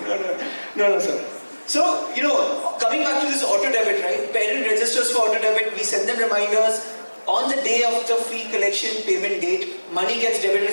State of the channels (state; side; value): inverted; both; correlation -1.00